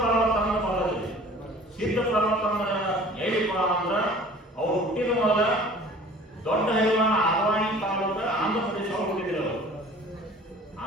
ಅಂತ ಬರೋದಿಲ್ಲ. ಸಿದ್ಧ ಪರ್ವತ ಅಂದ್ರೆ ಹೇಳಿಪ್ಪ ಅಂದ್ರೆ ಅವ್ರು ಹುಟ್ಟಿದ ಮೊದಲ ದೊಡ್ಡ ಹೈವಾನ ಆದವಾಣಿ ತಾಲೂಕ ಆಂಧ್ರ ಪ್ರದೇಶ ಹುಟ್ಟಿದ್ರು. ಅವರು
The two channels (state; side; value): normal; both; correlation 0.47